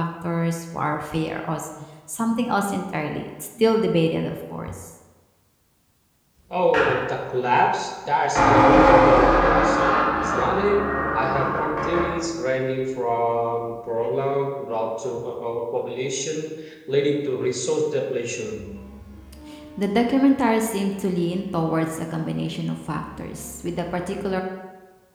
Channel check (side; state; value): both; identical; correlation 1.00